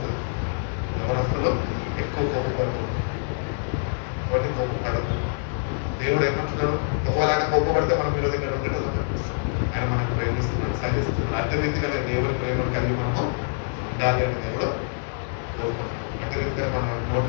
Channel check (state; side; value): silent; right; digital silence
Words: యవనస్తులు ఎక్కువ కోపపడుతుంది. కాబట్టి కోపపడదు. దేవుడు ఏమంటున్నాడు? ఒకవేళ కోపపడితే మనం మీరు దగ్గర ఉండేది ఆయన మనకు ప్రేమిస్తున్నాడు, సహిస్తున్నాడు. అదే రీతిగా దేవుడి ప్రేమను కలిగి మనము ఉండాలి అని దేవుడు కోరుకుంటున్నాడు. అదే రీతిగా మన